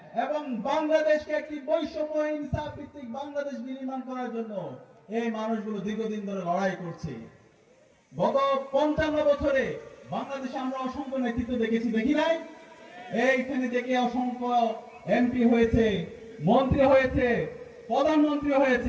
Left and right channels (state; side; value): identical; both; correlation 1.00